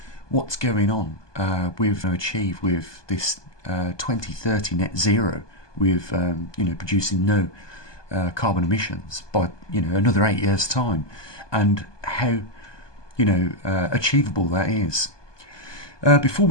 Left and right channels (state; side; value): late; right; 1.2 ms